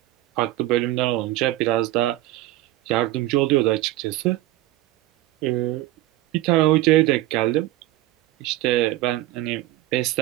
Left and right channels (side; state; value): left; quieter; 15.9 dB